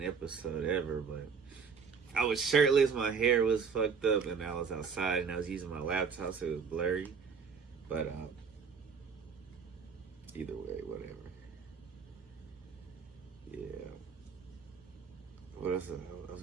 episode ever, but I was shirtless, my hair was fucked up, and I was outside and I was using my laptop so it was blurry. But either way, whatever. Yeah. What else? I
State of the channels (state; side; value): quieter; left; 5.9 dB